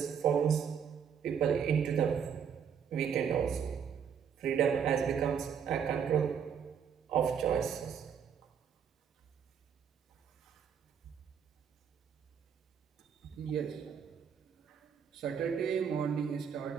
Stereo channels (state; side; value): quieter; left; 7.5 dB